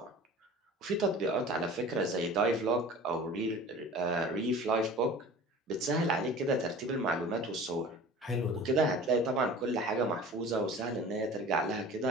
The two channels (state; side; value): normal; both; correlation 0.41